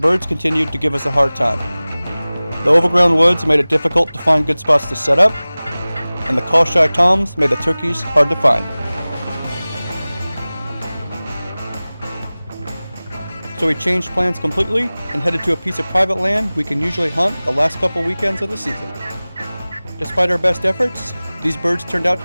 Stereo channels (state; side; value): inverted; both; correlation -0.99